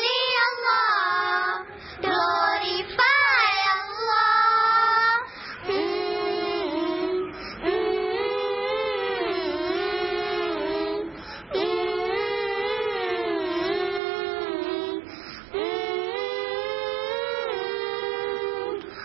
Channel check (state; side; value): drops out; left; at 14.0 s